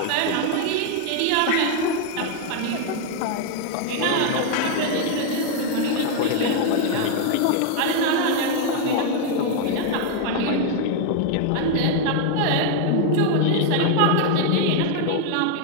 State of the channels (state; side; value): different; both; correlation 0.01